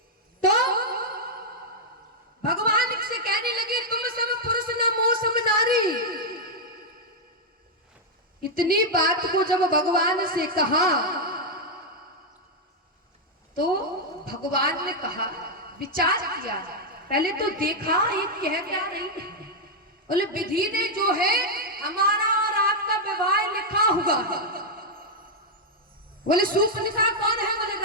तो भगवान से कहने लगे तुम सब पुरुष नमो सम नारी। इतनी बात को जब भगवान से कहा तो भगवान ने कहा, विचार किया, पहले तो देखा ये कह क्या रही है। बोले विधि ने जो है हमारा और आपका विवाह लिखा हुआ है। बोले शूर्पणखा कौन है? बोले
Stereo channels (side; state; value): both; normal; correlation -0.02